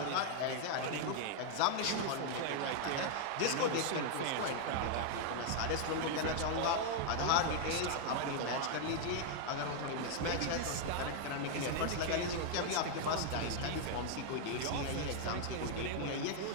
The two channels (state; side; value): different; both; correlation 0.00